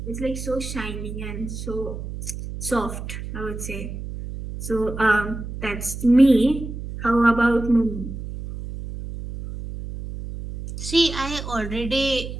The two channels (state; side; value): noise; right; hum, 8 dB below the sound